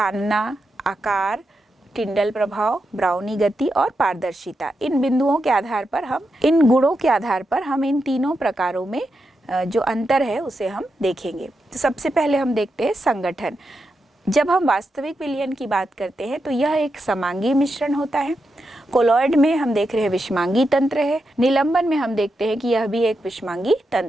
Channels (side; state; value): both; normal; correlation 0.86